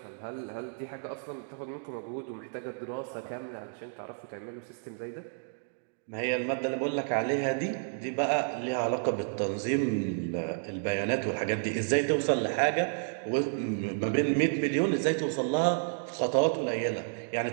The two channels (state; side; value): silent; left; digital silence